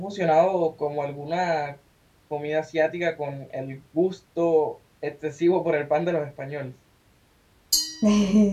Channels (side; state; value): both; identical; correlation 1.00